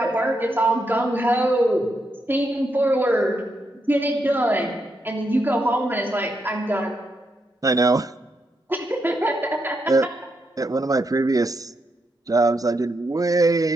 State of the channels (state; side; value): normal; both; correlation 0.81